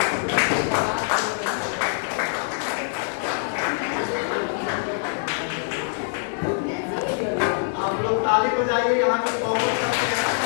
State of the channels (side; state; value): right; silent; digital silence